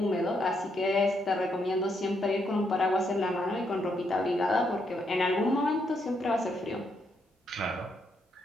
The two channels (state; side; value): normal; both; correlation 0.76